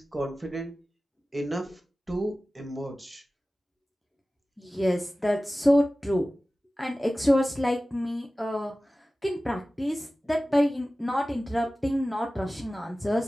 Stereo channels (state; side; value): normal; both; correlation 0.96